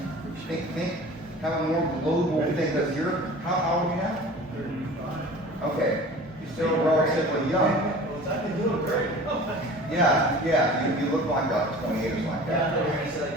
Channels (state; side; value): normal; both; correlation 0.41